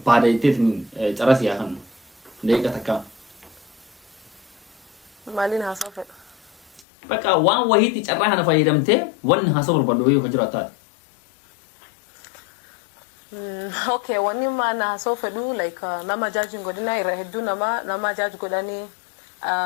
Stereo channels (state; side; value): drops out; right; at 6.9 s